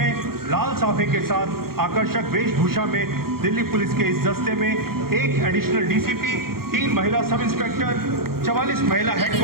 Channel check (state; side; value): late; left; 0.94 ms